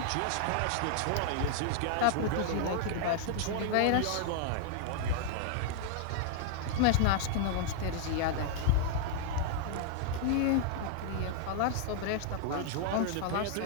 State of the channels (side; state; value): both; different; correlation 0.00